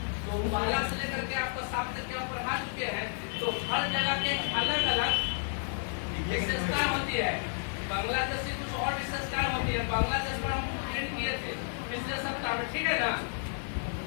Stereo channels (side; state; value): right; silent; digital silence